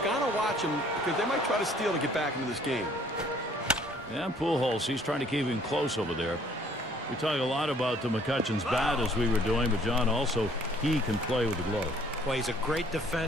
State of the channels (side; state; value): both; normal; correlation 0.59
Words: got to watch him because they might try to steal to get back into this game. Yeah, Pujols, he's trying to keep him close over there. We talk a lot about the McCutchen's bat as we were doing, but John, also, he can play with the glove. Well, he's a great